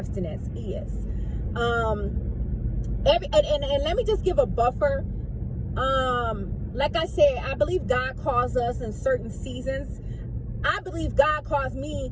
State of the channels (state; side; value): identical; both; correlation 1.00